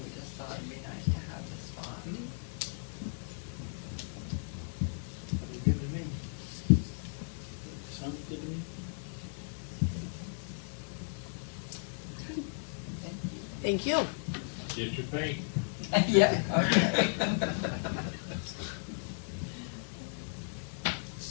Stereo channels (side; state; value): right; silent; 54 dB below the other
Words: we just thought it'd be nice to have this spot. Sounds good to me. Sounds good to me. Thank you. Thank you. Get your paint. Yeah, okay.